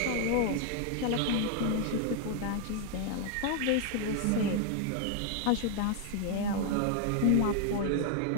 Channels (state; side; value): different; both; correlation 0.00